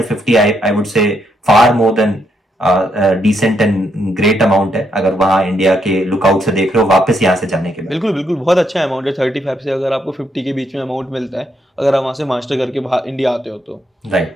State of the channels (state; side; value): normal; both; correlation 0.77